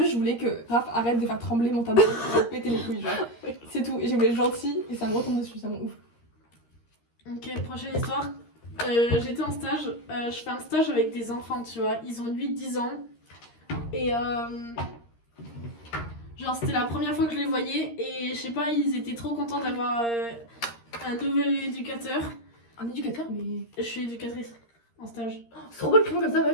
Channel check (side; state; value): right; late; 13 ms